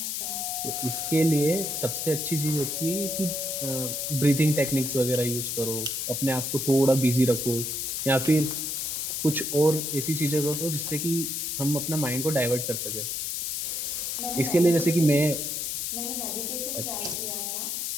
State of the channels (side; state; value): left; noise; hiss, 2 dB below the sound